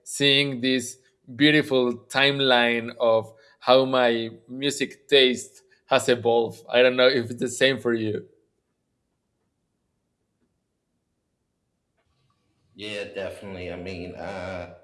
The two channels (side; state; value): both; identical; correlation 1.00